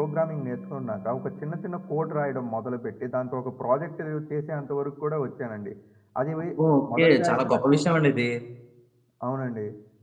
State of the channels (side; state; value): both; identical; correlation 1.00